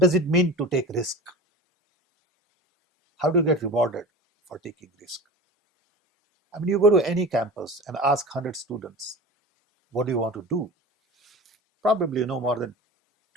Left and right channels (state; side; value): normal; both; correlation 0.33